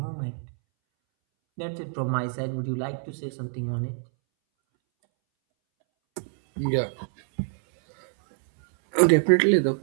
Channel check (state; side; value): silent; left; 61 dB below the other